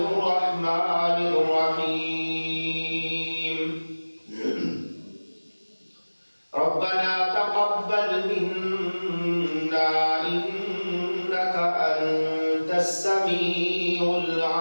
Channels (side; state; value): both; inverted; correlation -1.00